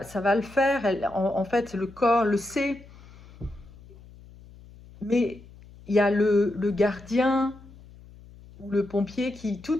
le faire. En fait, le corps le sait, mais il y a le gardien ou le pompier qui tout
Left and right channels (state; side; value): noise; left; hum, 21 dB below the sound